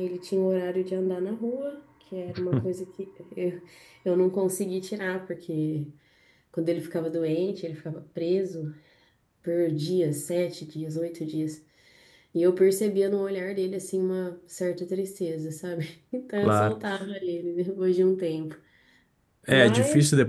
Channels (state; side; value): identical; both; correlation 1.00